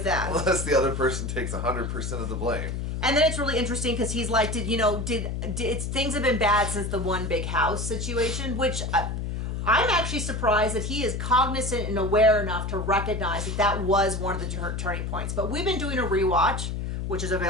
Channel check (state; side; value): noise; left; hum, 3 dB below the sound